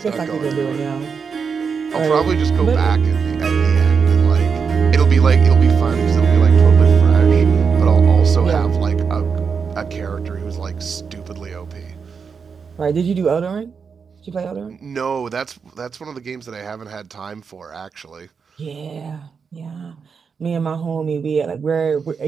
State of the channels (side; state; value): left; quieter; 5.9 dB